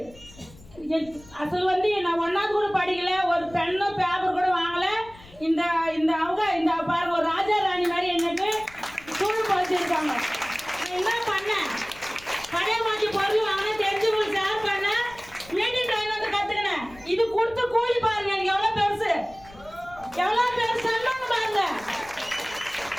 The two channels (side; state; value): left; noise; rumble, 23 dB below the sound